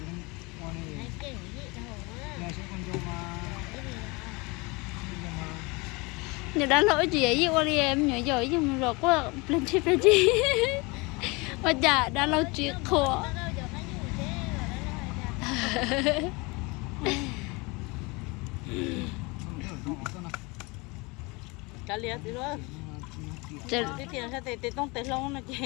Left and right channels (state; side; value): quieter; right; 26.6 dB